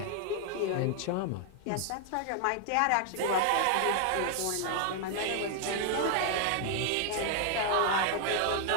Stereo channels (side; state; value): both; different; correlation 0.00